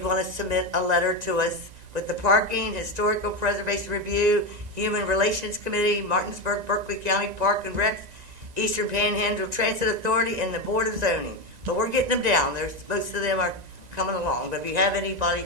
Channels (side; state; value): left; late; 1.9 ms